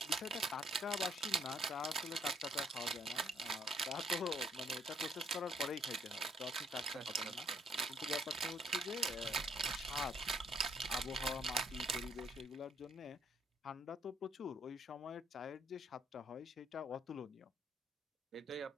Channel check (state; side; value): normal; both; correlation 0.66